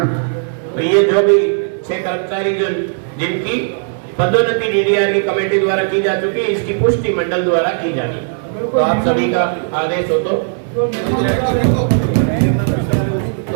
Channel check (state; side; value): silent; left; digital silence